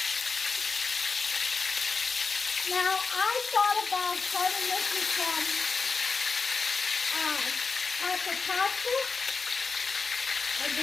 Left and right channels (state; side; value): quieter; right; 4.7 dB